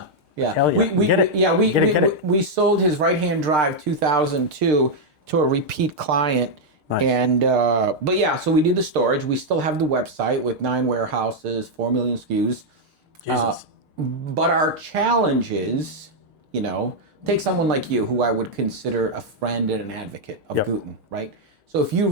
yeah. We sold his right-hand drive 2002 to a repeat client. Nice. And so we do the storage. We still have the website with 9 warehouses, 4 million SKUs. Jesus. But our challenge is, take someone like you, who I would consider a friend and an advocate of Guten, right? So if you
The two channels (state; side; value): late; left; 6.6 ms